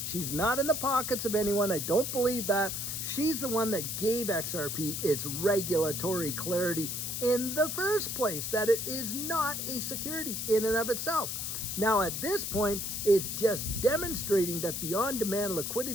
She's not in the pockets of anyone. I don't believe that. She's the one that gave XRP its regulatory clarity in the first place, that it is not a security in and of itself. Now, at this point, it's just demonstrating that the on-demand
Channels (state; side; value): noise; left; hiss, 3 dB below the sound